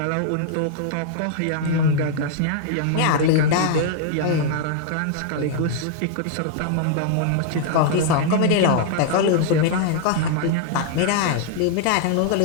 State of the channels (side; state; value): both; different; correlation -0.01